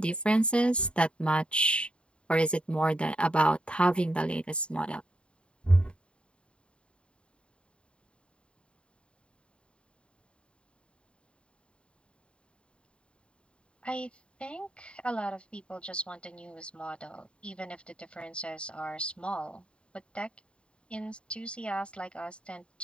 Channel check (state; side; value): late; right; 0.056 ms